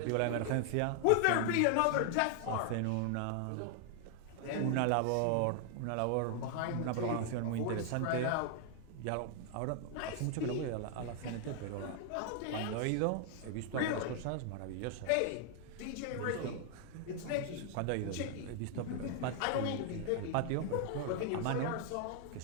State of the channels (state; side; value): different; both; correlation 0.00